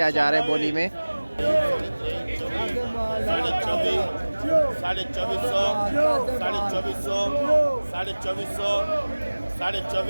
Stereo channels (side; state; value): both; inverted; correlation -1.00